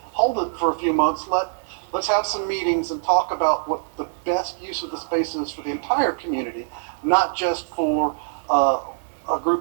hold it for a few months. Let's have some meetings and talk about what the best use of the space is for the entire community, not just for a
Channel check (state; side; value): silent; left; digital silence